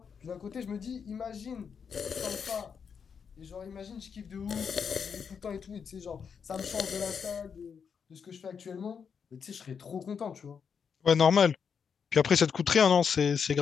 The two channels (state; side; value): quieter; right; 6.6 dB